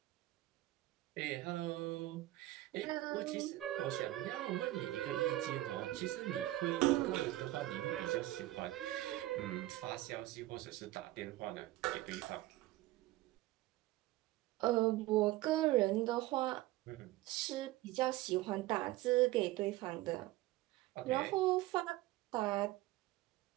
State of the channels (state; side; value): quieter; left; 17.1 dB